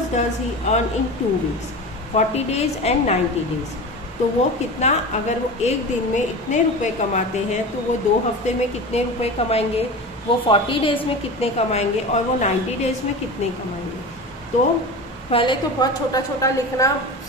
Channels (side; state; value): both; normal; correlation 0.30